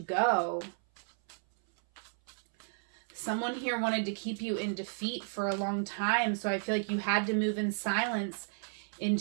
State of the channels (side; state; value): left; silent; 56 dB below the other